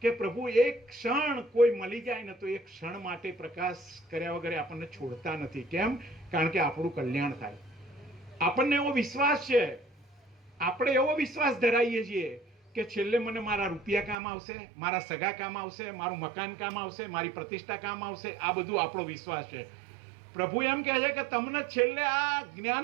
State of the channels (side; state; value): left; drops out; at 14.2 s